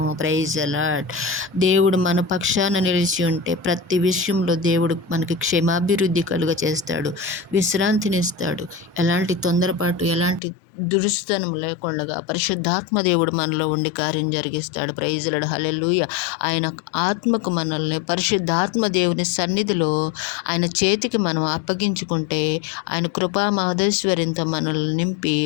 Praise the Lord. దేవుడు మన పక్షాన నిలిచి ఉంటే ప్రతి విషయంలో దేవుడు మనకి క్షేమాభివృద్ధి కలుగ చేస్తాడు, విశ్రాంతినిస్తాడు. ఎలాంటి తొందరపాటు, ఎలాంటి దురుస్తనం లేకుండా పరిశుద్ధాత్మ దేవుడు మనలో ఉండి కార్యం జరిగిస్తాడు. Praise Lord. హల్లెలూయా. ఆయన ఆత్మకు మనల్ని పరిశుద్ధాత్మ దేవుని సన్నిధిలో ఆయన చేతికి మనం అప్పగించుకుంటే ఆయన కృపా మహదేశ్వరింతో మనల్ని నింపి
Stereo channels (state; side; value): drops out; right; at 10.4 s